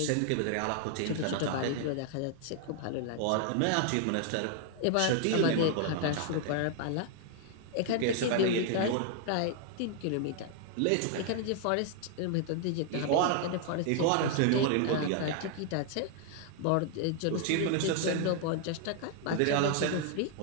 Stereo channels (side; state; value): both; different; correlation 0.00